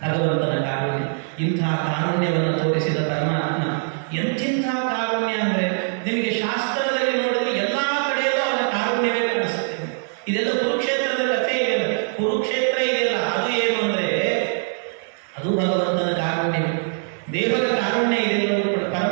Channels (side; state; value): left; silent; digital silence